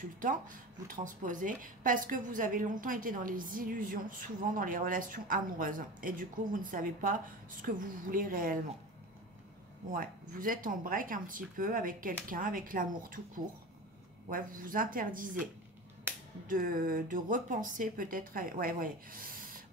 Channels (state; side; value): normal; both; correlation 0.30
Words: vous transposez, parce que vous avez longtemps été dans les illusions, souvent dans les relations amoureuses. Et du coup, vous ne savez pas ce que vous voulez réellement. Ouais, vous êtes en break un petit peu avec quelqu'un, avec l'amour tout court. Ouais, vous vous interdisez de repenser peut-être... Ouais.